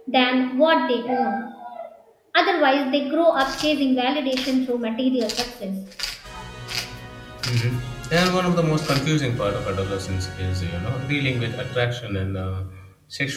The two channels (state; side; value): identical; both; correlation 1.00